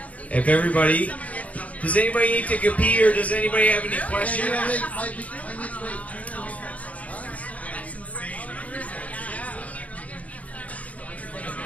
If everybody, does anybody need to go pee or does anybody have any questions?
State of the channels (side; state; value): right; late; 0.069 ms